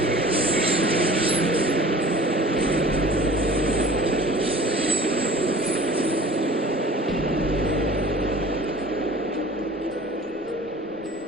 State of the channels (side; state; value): both; normal; correlation 0.44